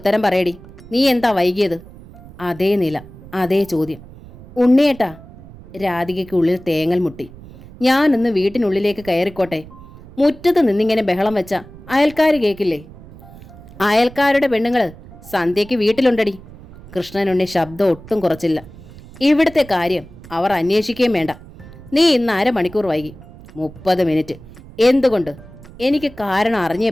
പറയടി, നീ എന്താ വൈകിയത്? അതേ നില, അതേ ചോദ്യം. ഉണ്ണിയേട്ടാ! രാധികയ്ക്കുള്ളിൽ തേങ്ങൽ മുട്ടി. ഞാനൊന്ന് വീട്ടിനുള്ളിലേക്ക് കയറിക്കോട്ടെ? മുറ്റത്ത് നിന്നിങ്ങനെ ബഹളം വെച്ച അയൽക്കാർ കേൾക്കില്ലേ? അയൽക്കാരുടെ പെണ്ണുങ്ങൾ സന്ധ്യയ്ക്ക് വീട്ടിലുണ്ടടി. കൃഷ്ണനുണ്ണി ശബ്ദം ഒട്ടും കുറച്ചില്ല. ഇവിടുത്തെ കാര്യം അവർ അന്വേഷിക്കുകയും വേണ്ട. നീ ഇന്ന് അരമണിക്കൂർ വൈകി. 30 മിനിറ്റ്. എന്തുകൊണ്ട്? എനിക്ക് കാരണം അറിഞ്ഞേ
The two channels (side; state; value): right; noise; rumble, 19 dB below the sound